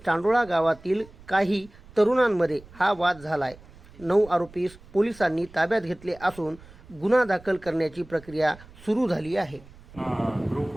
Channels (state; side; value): noise; right; rumble, 22 dB below the sound